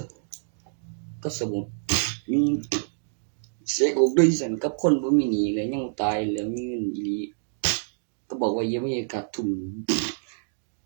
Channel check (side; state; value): left; silent; digital silence